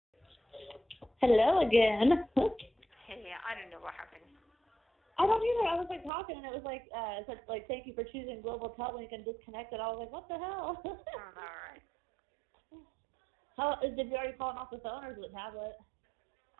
Hello again. Hey, I don't know what happened. I don't either. I was like talking and it was like it said like thank you for choosing Global Tellink and disconnected. I was like, what the hell? All right. Did you already call him off the phone or is it a tablet?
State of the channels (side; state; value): left; drops out; at 6.1 s